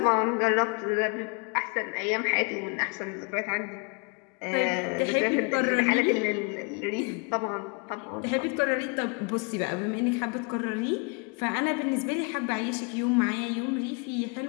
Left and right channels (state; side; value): quieter; right; 34.3 dB